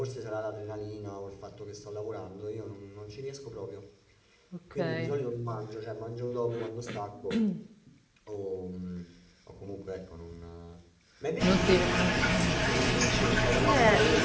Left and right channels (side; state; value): both; identical; correlation 1.00